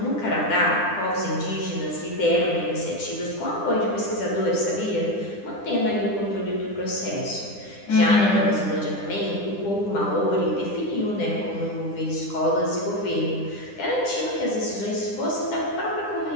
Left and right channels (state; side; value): late; right; 9.9 ms